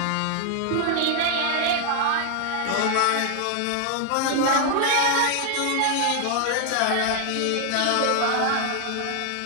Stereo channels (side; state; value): both; different; correlation 0.00